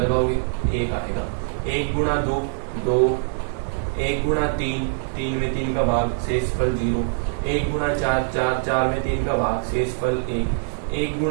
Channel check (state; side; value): silent; left; digital silence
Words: 1 आएगा। 1 गुणा 2 2, 1 गुणा 3 3 में 3 का भाग शेष फल 0, 1 गुणा 4 4 4 में 3 का भाग शेष फल 1, 1